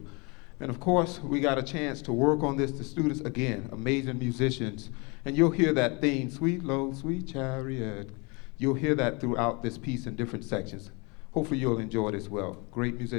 And of course, we got a chance to work on this. The students, again, amazing musicians. And you'll hear that theme, Sweet Low, Sweet Chariot. You'll hear that throughout this piece in different sections. Hopefully you'll enjoy it as well. Great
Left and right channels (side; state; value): right; quieter; 29.8 dB